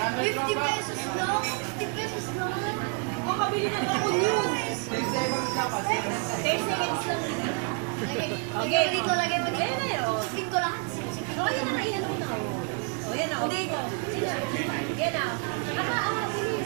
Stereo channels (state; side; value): quieter; left; 38.1 dB